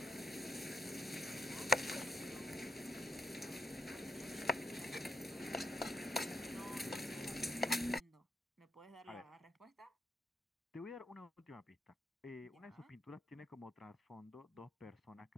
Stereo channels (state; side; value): normal; both; correlation 0.78